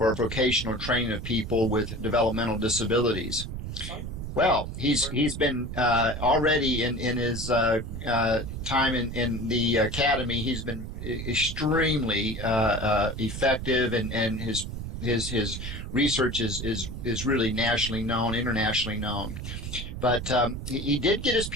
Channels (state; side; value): noise; right; rumble, 7 dB below the sound